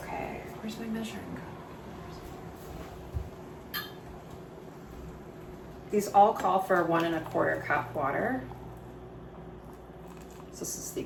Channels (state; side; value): identical; both; correlation 1.00